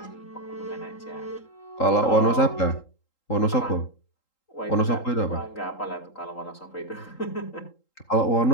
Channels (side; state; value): right; late; 3.8 ms